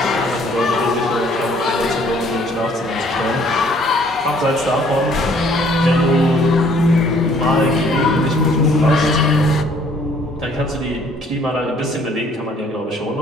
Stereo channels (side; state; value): both; normal; correlation 0.60